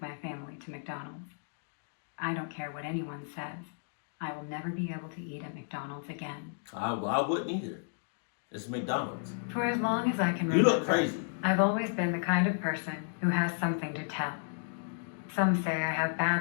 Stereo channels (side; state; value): right; silent; digital silence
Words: my family to McDonald's. I don't care what anyone says. I will never be able to eat at McDonald's again. I wouldn't either. It's McDonald's. For as long as I can remember, You look crazy. I've always been the kind of person who has something to tell. Some say I have